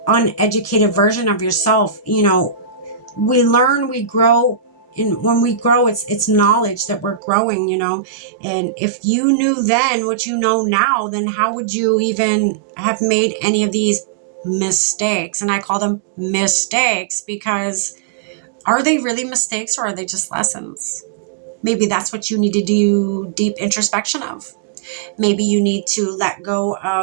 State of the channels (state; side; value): drops out; left; at 7.2 s